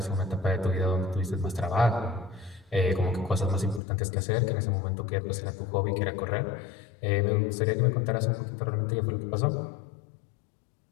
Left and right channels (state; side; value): drops out; right; at 3.8 s